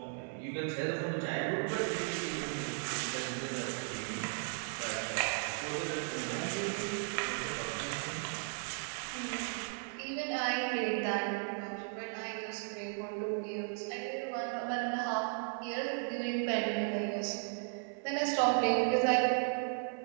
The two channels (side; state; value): left; silent; 54 dB below the other